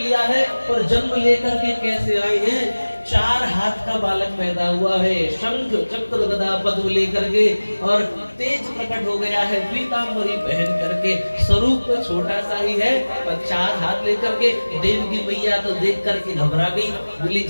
है। और जन्म लेकर के कैसे आए हैं? 4 हाथ का बालक पैदा हुआ है, शंख चक्र गदा पद्म लेकर के, और तेज प्रकट हो गया है पीतांबरी पहन करके। स्वरूप तो छोटा सा ही है, पर 4 हाथ लेकर के देवकी मैया तो देख करके घबरा गई, बोली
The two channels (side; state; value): both; inverted; correlation -1.00